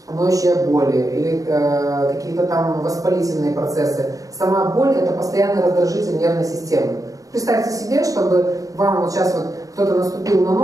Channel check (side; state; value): left; late; 0.17 ms